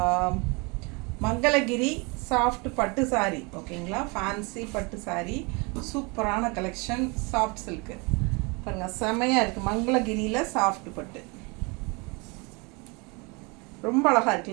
மங்களகிரி சாஃப்ட் பட்டு சாரி. ஓகேங்களா, ஃபேன்சி பட்டு சாரி, சூப்பரான கலெக்ஷன். சாஃப்ட் சில்க்கு பாருங்கள், செமையாக இருக்குது. மங்களகிரியில் சாஃப்ட் பட்டு ரொம்ப அழகாக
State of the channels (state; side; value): quieter; left; 29.1 dB